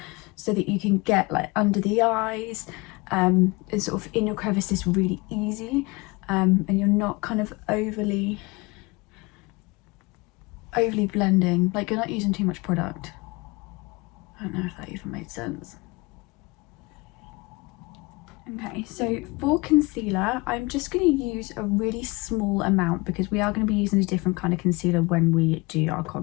so that you can get like under the eyes and sort of in your crevices really easy, and you're not kind of overly blending, like you're not using too much product. I don't know if that even made sense. Okay, so for concealer, I'm just going to use a really small amount because we are going to be using a different kind of concealer when we do our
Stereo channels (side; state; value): right; quieter; 25.3 dB